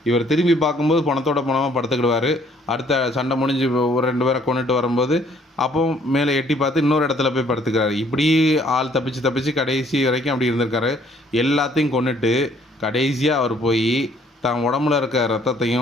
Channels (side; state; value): both; normal; correlation 0.62